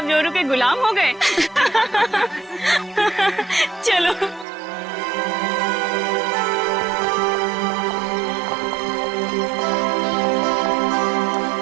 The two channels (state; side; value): drops out; left; at 4.5 s